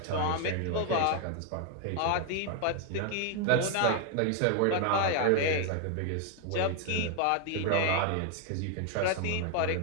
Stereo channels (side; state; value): both; different; correlation 0.01